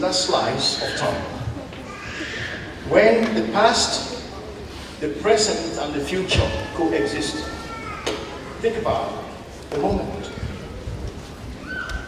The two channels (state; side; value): identical; both; correlation 1.00